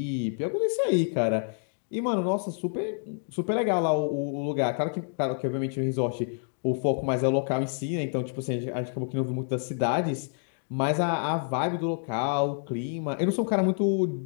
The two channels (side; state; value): right; silent; 59 dB below the other